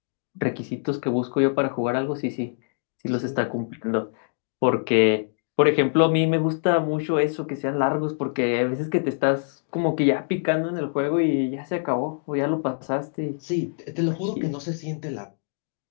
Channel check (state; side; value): silent; right; digital silence